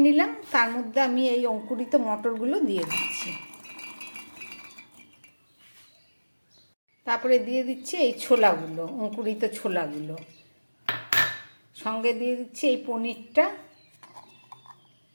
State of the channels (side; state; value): both; inverted; correlation -1.00